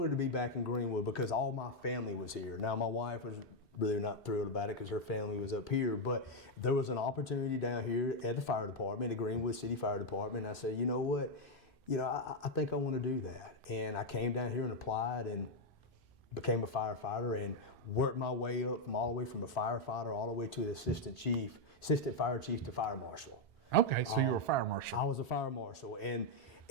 to be back in Greenwood because all my family was here. Now, my wife was really not thrilled about it because her family was up here, but there was an opportunity down here at the fire department, the Greenwood City Fire Department, and I said, you know what, you know, I think I want to do that. And I came down here and applied, and became a firefighter and worked my way up from all the way from a firefighter all the way to the assistant fire chief to fire marshal. Okay, so you were a fire marshal. I was a fire marshal, and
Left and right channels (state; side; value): normal; both; correlation 0.01